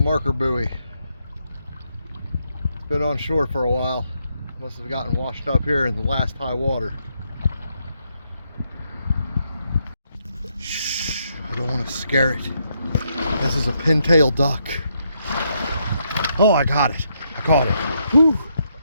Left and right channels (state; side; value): inverted; both; correlation -0.77